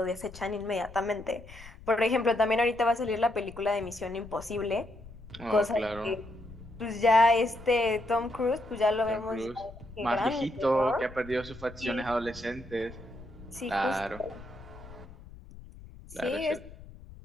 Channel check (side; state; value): left; noise; rumble, 18 dB below the sound